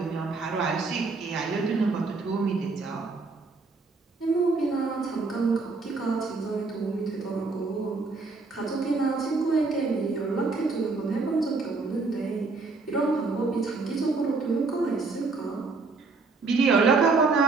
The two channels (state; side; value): quieter; left; 4.0 dB